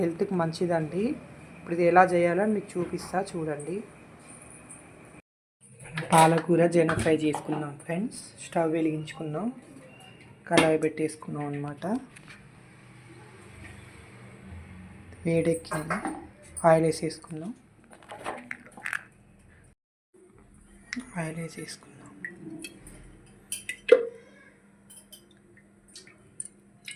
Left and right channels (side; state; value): both; identical; correlation 1.00